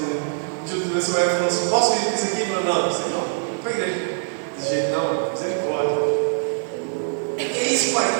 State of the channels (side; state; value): left; silent; 63 dB below the other